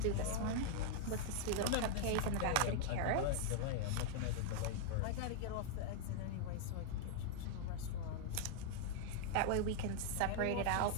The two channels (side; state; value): both; different; correlation 0.00